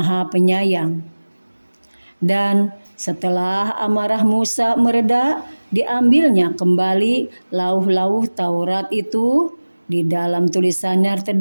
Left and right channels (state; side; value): inverted; both; correlation -1.00